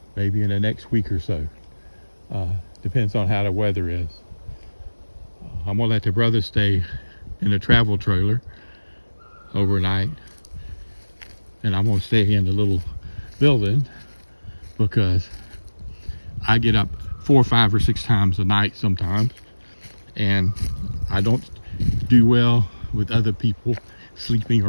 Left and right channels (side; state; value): both; inverted; correlation -1.00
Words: maybe in the next week or so. Depends on how the weather is. I'm gonna let the brothers stay in the travel trailer overnight, and I'm gonna stay in the little building because I get up 4, 5, or 6 times a night sometimes, and I don't do well with other people sleeping